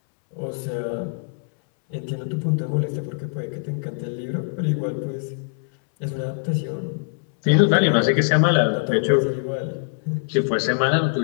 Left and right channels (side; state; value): right; silent; 63 dB below the other